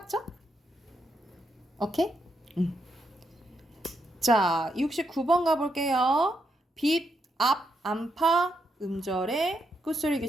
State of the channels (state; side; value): normal; both; correlation 0.80